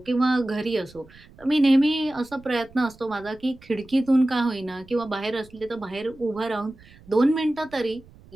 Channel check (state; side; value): noise; right; rumble, 24 dB below the sound